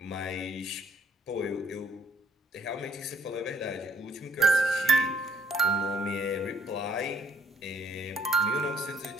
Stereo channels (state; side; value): normal; both; correlation 0.66